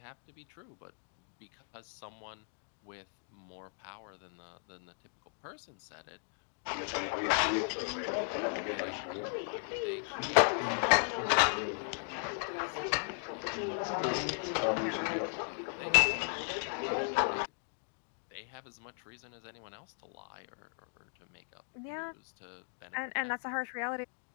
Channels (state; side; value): silent; right; 53 dB below the other